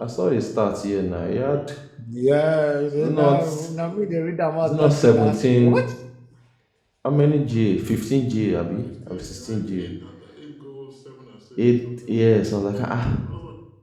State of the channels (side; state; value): both; identical; correlation 1.00